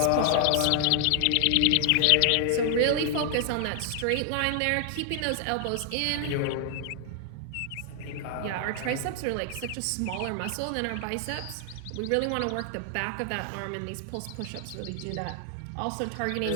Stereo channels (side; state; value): both; different; correlation 0.00